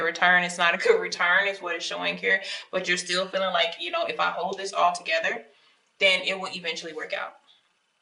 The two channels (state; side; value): identical; both; correlation 1.00